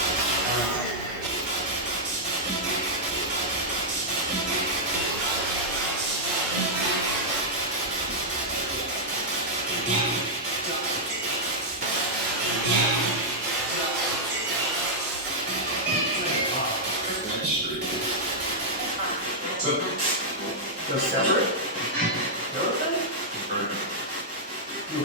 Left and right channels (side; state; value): both; normal; correlation -0.06